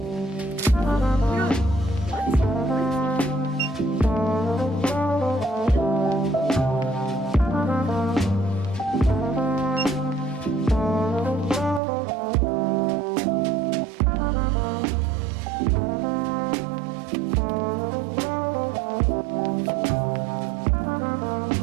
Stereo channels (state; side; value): drops out; left; at 11.8 s